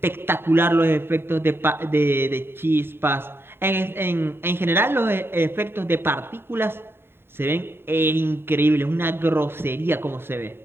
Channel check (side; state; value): left; late; 0.11 ms